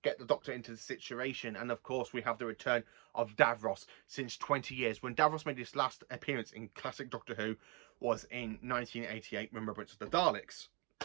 get the Doctor into the situation. And of course we have the return of Davros since 20 years. When Davros made his last appearance in classic Doctor Who was in 1988, Remembrance of the Daleks.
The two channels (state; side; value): quieter; left; 31.8 dB